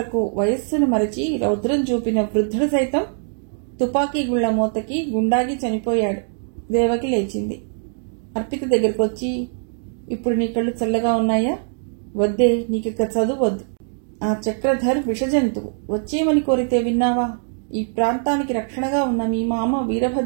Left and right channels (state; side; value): silent; left; 64 dB below the other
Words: వయస్సును మరచి రౌద్రం చూపిన వృద్ధుడు సైతం తుపాకీ గుళ్ల మోతకి గుండాగి చనిపోయాడు. దేవకి లేచింది. అర్పిత దగ్గరకు వచ్చి, ఇప్పుడు నీ కళ్ళు చల్లగా ఉన్నాయా? వద్దే, నీకిక చదువు వద్దు. ఆ చక్రధర్ విషజంతువు, వచ్చేమని కోరితే విన్నావా? ఈ ప్రాంతానికి రక్షణగా ఉన్న మీ మామ